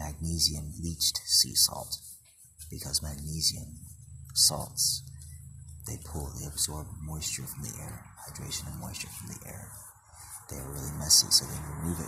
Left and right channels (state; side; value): normal; both; correlation 0.97